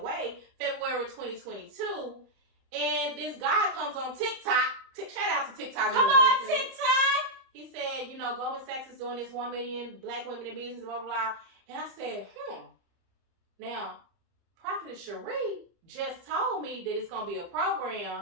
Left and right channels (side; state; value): left; late; 30 ms